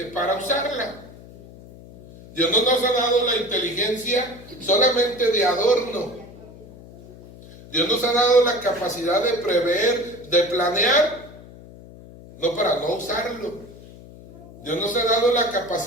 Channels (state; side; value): noise; left; hum, 19 dB below the sound